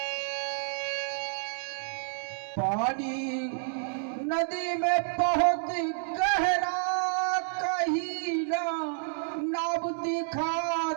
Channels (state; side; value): silent; left; digital silence